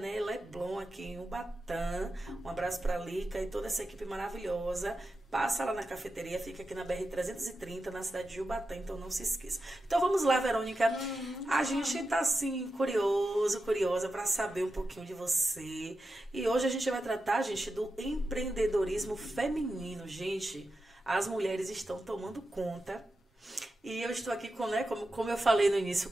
Leblon, aqui em Ubatã. Um abraço pra Lica e toda essa equipe maravilhosa. Passa lá na cafeteria, fica aqui na BR-330, na cidade de Ubatã, então não se esqueça. Então vamos lá, Verônica. A gente tá assim, curiosa para saber um pouquinho de você. E hoje a gente vai tratar, gente, do empreendedorismo feminino. Gente, as mulheres estão tomando conta. E eu estou aqui com, né, como eu falei no início,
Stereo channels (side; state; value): both; normal; correlation 0.90